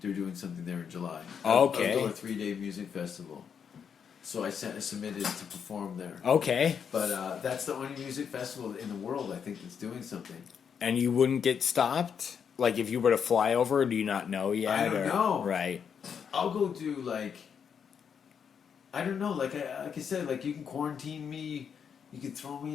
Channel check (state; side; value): quieter; right; 7.2 dB